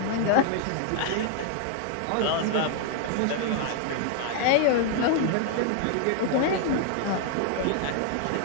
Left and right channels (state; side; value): different; both; correlation 0.00